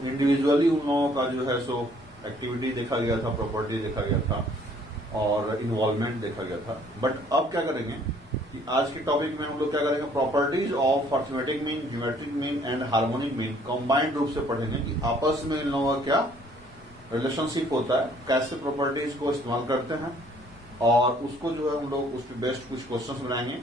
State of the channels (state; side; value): normal; both; correlation 0.60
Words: इंडिविजुअली उन लोगों का जो है सो एक्टिविटी देखा गया था, प्रॉपर्टी देखा गया था और इन्वॉल्वमेंट देखा गया था। बट अब क्या करेंगे कि आज के टॉपिक में हम लोग क्या करेंगे, properties of arithmetic mean, geometric mean and harmonic mean combined रूप से पढ़ेंगे कि आपस में इन लोगों का क्या रिलेशनशिप होता है, कैसे प्रॉपर्टीज को इस्तेमाल करते हैं और उसको जो है हम लोग उस पर बेस्ट कुछ क्वेश्चंस बनाएंगे।